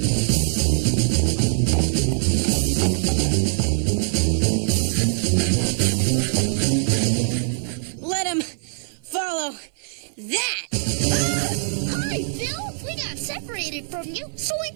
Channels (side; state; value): left; silent; 56 dB below the other